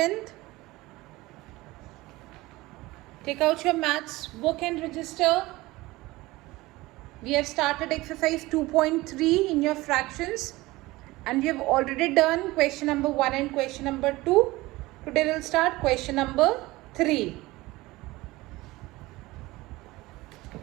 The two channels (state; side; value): quieter; left; 19.9 dB